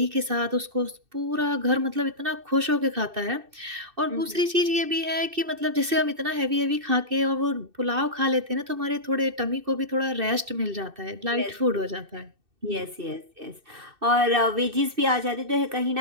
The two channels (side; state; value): left; late; 2.6 ms